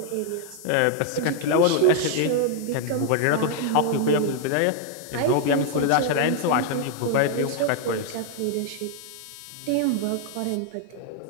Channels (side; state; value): both; different; correlation 0.00